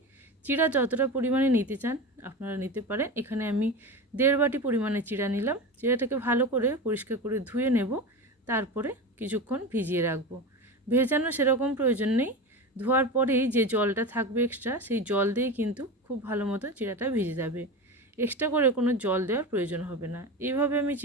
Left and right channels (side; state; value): both; normal; correlation 0.25